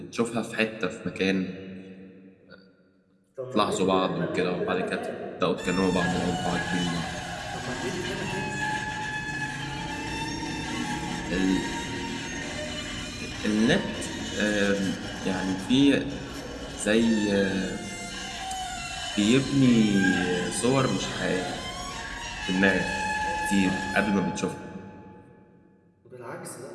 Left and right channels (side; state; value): both; identical; correlation 1.00